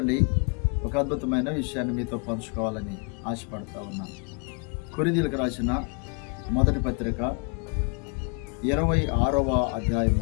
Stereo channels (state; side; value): quieter; right; 35.8 dB